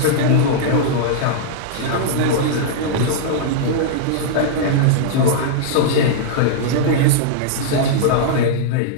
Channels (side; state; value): both; different; correlation -0.02